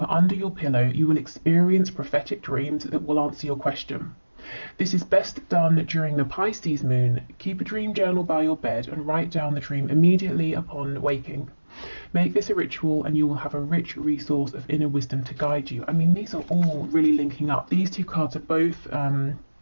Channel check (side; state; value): both; inverted; correlation -1.00